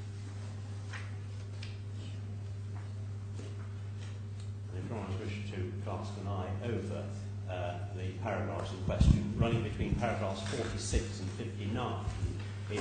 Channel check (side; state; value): both; identical; correlation 1.00